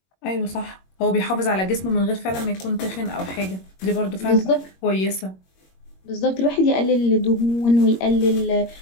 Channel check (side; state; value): right; late; 21 ms